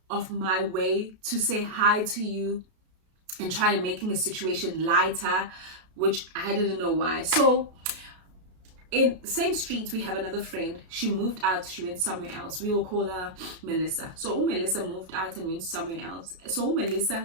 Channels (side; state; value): left; late; 33 ms